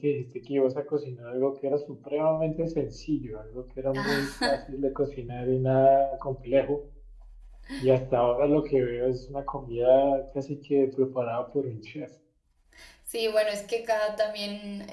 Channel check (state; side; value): identical; both; correlation 1.00